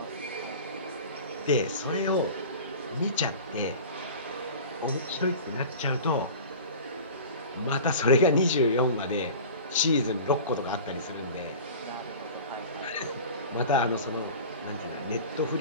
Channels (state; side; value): inverted; both; correlation -0.37